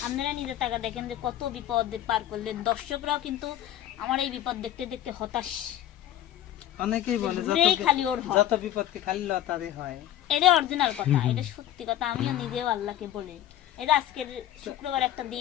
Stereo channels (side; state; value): right; quieter; 12.1 dB